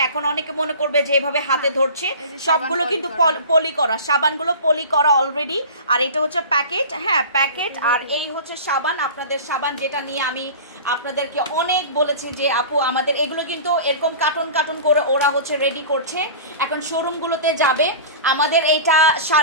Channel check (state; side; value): inverted; both; correlation -0.36